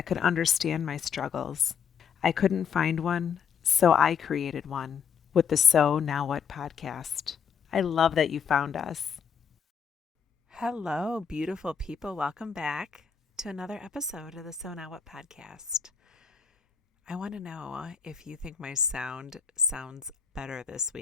could understand my struggles. I couldn't find one, so I created one with the So Now What podcast. I love that you found us. Hello, beautiful people. Welcome back to another episode of the So Now What podcast. I want to know if you think my sound sounds better this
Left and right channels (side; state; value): right; quieter; 7.0 dB